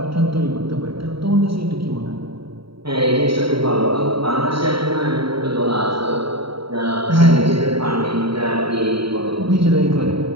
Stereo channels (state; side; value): late; left; 0.75 ms